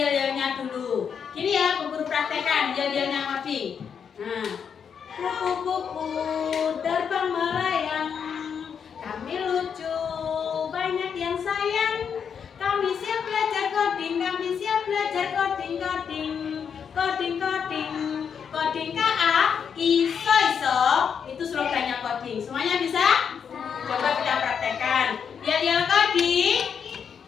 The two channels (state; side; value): quieter; right; 7.1 dB